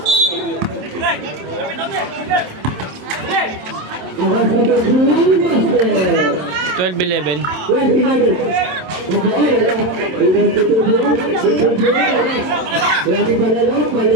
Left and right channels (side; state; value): left; late; 27 ms